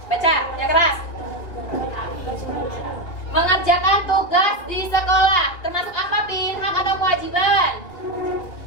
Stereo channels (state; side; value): late; right; 2.6 ms